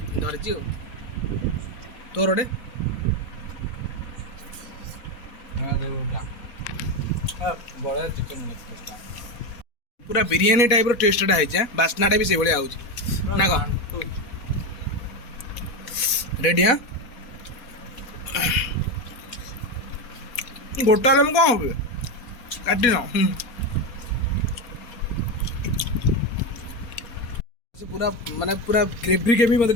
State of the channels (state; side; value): late; right; 4.2 ms